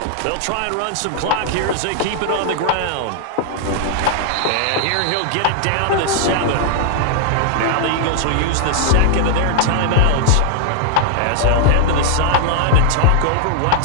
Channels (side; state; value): both; different; correlation 0.00